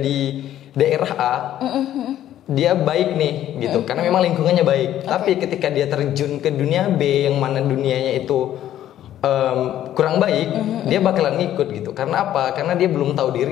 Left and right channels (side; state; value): right; quieter; 12.0 dB